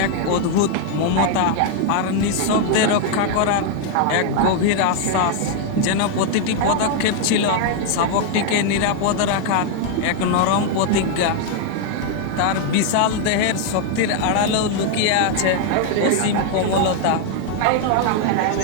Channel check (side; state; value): both; different; correlation 0.00